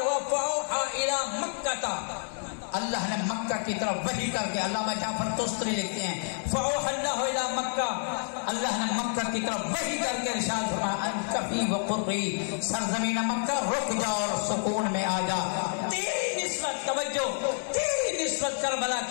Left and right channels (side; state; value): right; silent; 59 dB below the other